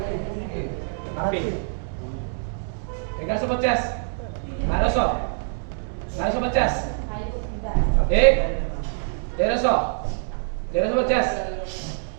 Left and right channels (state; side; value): silent; left; digital silence